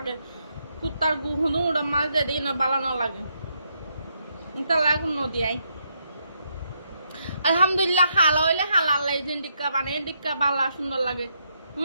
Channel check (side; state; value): both; inverted; correlation -0.77